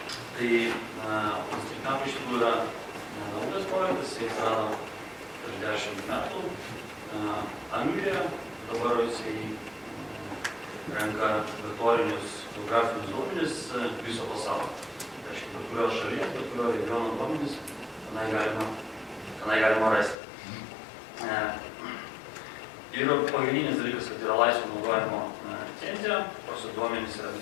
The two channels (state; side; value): drops out; right; at 20.2 s